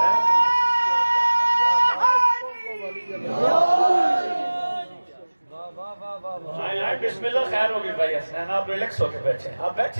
بسم اللہ. خیر ہوگی بھائی حسنین, آپ ریلیکس ہو کے بیٹھے, آپ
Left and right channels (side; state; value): both; inverted; correlation -1.00